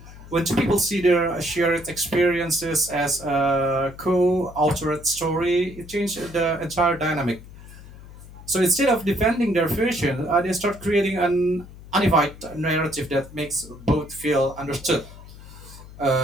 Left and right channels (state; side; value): noise; left; hum, 17 dB below the sound